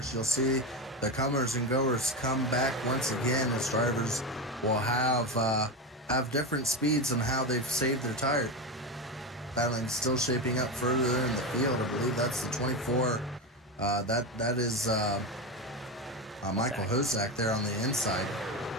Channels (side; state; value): both; normal; correlation 0.17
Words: you'll see the comers and goers come back once again, as drivers will have different speeds on how they've saved their tires. Battling still shaping up further in the field. I believe that's the 24. That is Michael Hosak there on the inside.